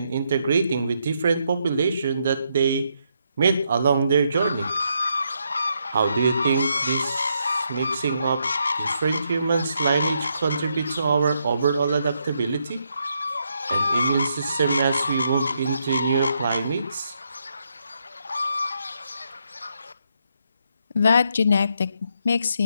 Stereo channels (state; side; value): inverted; both; correlation -0.78